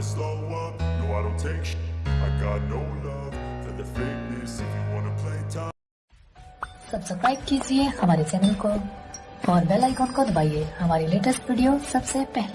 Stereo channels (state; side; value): identical; both; correlation 1.00